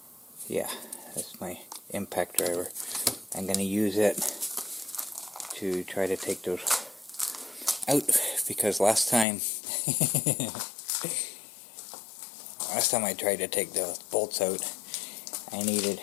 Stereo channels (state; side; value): drops out; right; at 9.2 s